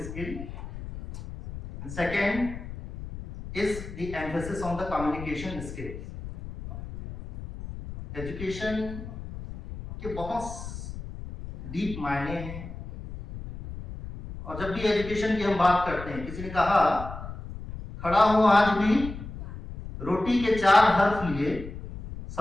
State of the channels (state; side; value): noise; left; rumble, 11 dB below the sound